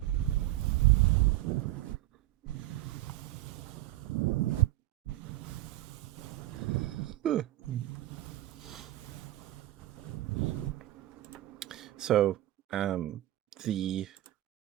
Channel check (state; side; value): quieter; left; 16.0 dB